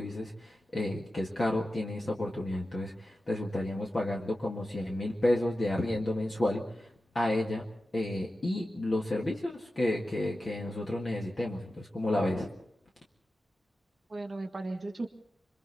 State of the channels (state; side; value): normal; both; correlation 0.93